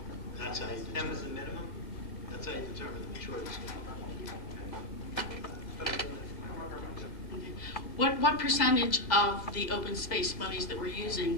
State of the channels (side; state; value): right; late; 2.0 ms